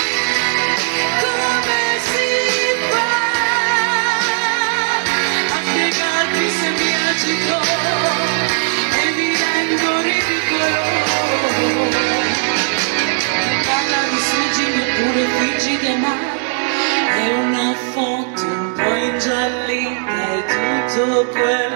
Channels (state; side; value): silent; left; digital silence